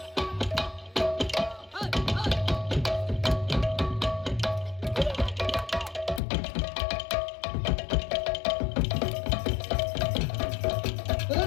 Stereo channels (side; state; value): right; drops out; at 6.2 s